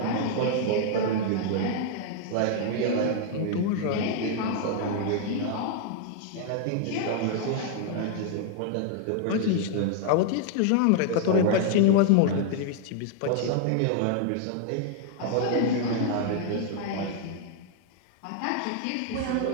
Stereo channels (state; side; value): different; both; correlation 0.00